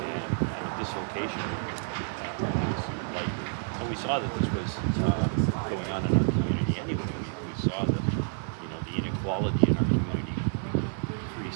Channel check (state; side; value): silent; left; 58 dB below the other